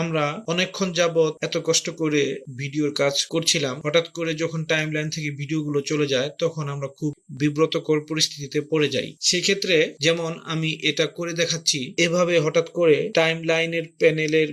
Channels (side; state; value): both; identical; correlation 1.00